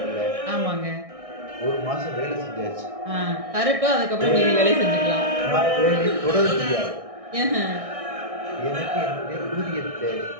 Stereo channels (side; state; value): left; late; 1.6 ms